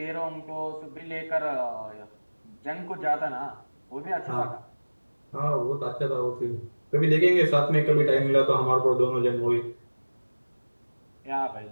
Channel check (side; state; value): both; inverted; correlation -1.00